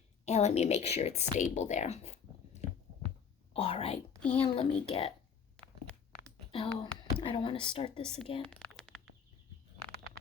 And let me make sure it's stable there. All right, and let me I don't want to start this again.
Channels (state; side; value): quieter; right; 6.9 dB